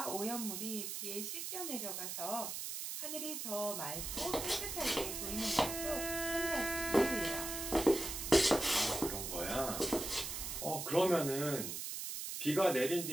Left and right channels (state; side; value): noise; right; hiss, 5 dB below the sound